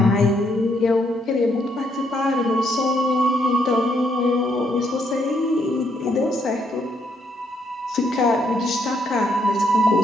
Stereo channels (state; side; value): normal; both; correlation 0.73